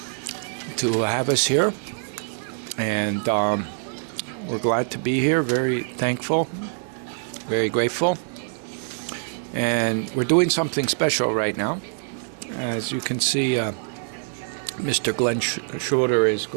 to have us here, and we're glad to be here. Very thankful, very grateful, and we're doing something special right now. As you can see, Mr. Glenn Schroeder is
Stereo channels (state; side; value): silent; left; digital silence